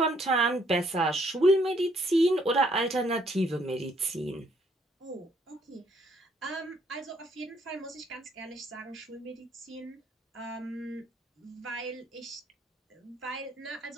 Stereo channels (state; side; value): normal; both; correlation 0.67